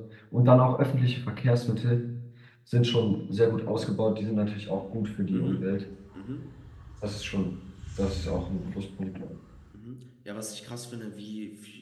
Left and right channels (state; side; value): identical; both; correlation 1.00